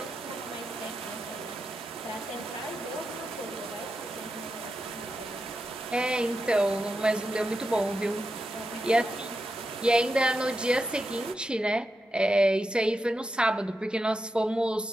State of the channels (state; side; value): normal; both; correlation 0.88